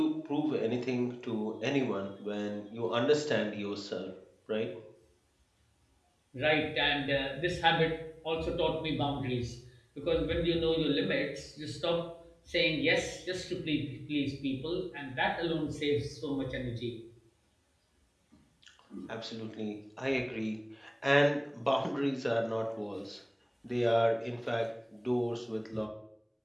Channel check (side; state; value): both; identical; correlation 1.00